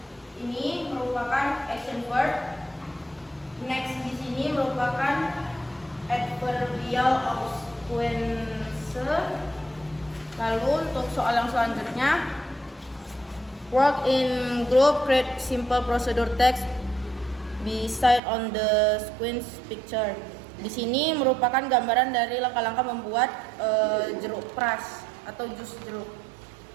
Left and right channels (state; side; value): drops out; left; at 18.2 s